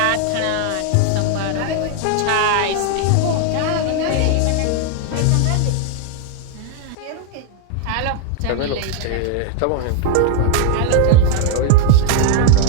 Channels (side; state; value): both; different; correlation 0.00